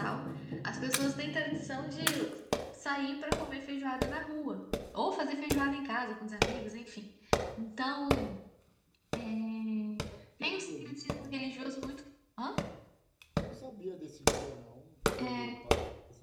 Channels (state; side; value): identical; both; correlation 1.00